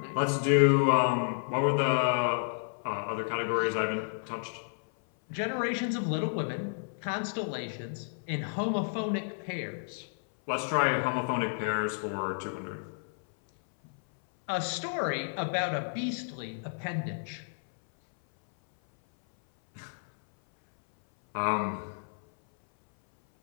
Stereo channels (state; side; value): silent; right; 57 dB below the other